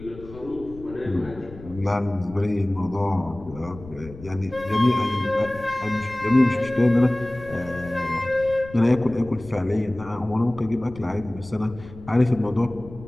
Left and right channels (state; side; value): noise; left; rumble, 17 dB below the sound